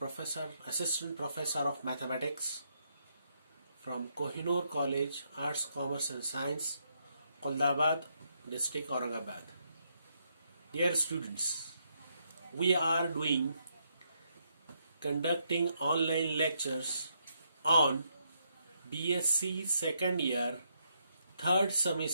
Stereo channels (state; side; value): inverted; both; correlation -0.76